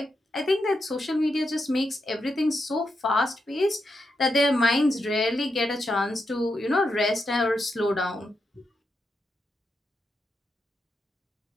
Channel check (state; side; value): normal; both; correlation 0.84